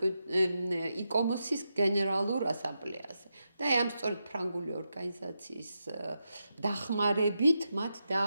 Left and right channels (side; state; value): both; inverted; correlation -0.87